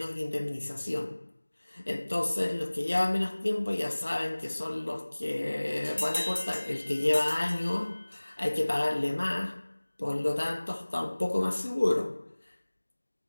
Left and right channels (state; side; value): inverted; both; correlation -1.00